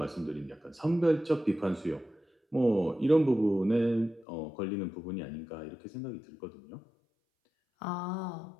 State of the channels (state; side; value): drops out; right; at 4.2 s